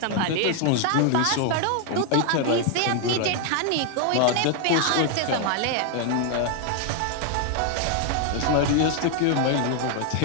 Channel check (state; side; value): different; both; correlation 0.00